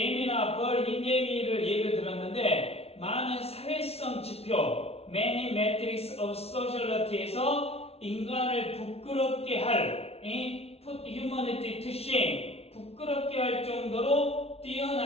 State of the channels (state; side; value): late; right; 0.30 ms